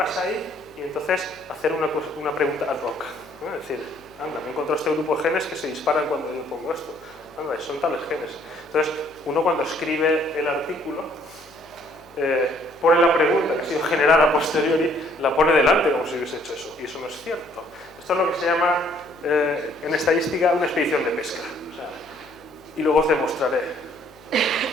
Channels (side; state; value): left; noise; hum, 27 dB below the sound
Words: ahí y entonces hacer una pregunta ad hoc, ¿no? Es decir, anda, me encontrado este grupo de genes que se disparan cuando yo pongo esto. Anda, son tales genes. Entonces, uno cuando escribe el artículo, pone la pregunta que ha sido generada a posteriori, la pone delante como si hubiese hecho eso. Y eso no es cierto. Esto es lo que se llama, en estadística, una expedición de pesca. O sea, y luego os demostraré